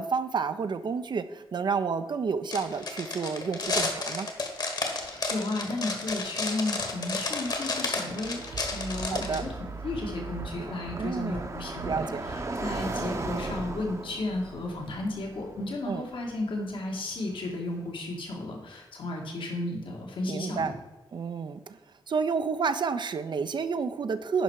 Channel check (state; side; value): normal; both; correlation 0.58